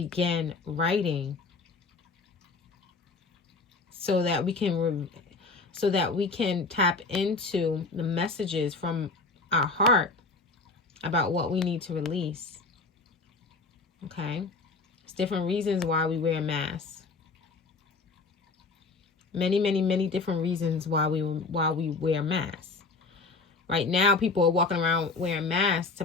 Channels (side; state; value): right; quieter; 4.0 dB